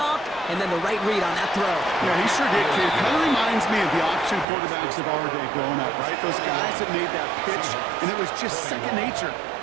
and then the right read on that throw. Yeah, he sure did, kid. Kind of reminds me of the option quarterbacks of our day growing up, right? Those guys that made that pitch, and it was just second nature.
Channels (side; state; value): left; drops out; at 4.5 s